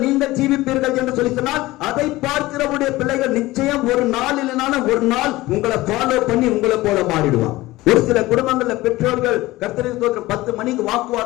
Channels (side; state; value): right; quieter; 18.6 dB